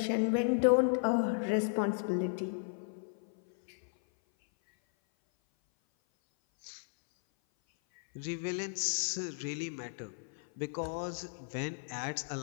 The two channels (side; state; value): right; silent; 55 dB below the other